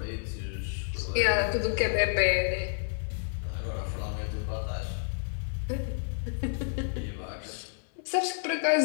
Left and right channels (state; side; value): silent; right; digital silence